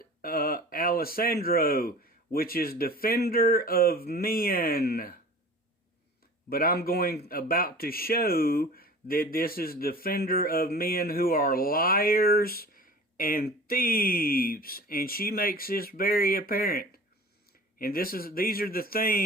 Alessandro, which is defender of men. But I'm about to show that this is defender of men who are liars and thieves. And she makes this very apparent. And these are the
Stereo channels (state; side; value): normal; both; correlation 0.40